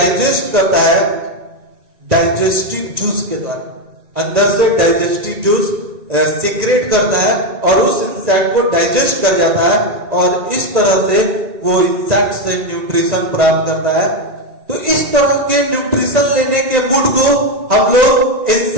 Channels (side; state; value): left; late; 1.9 ms